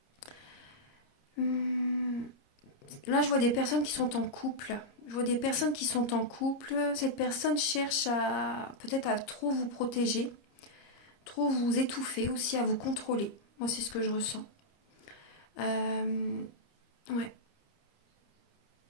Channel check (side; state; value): right; late; 30 ms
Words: Là, je vois des personnes qui sont en couple. Je vois des personnes qui sont en couple. Cette personne cherche peut-être à trop vous protéger, trop vous étouffer aussi, à vous contrôler. Moi, c'est ce que je ressens. Ouais.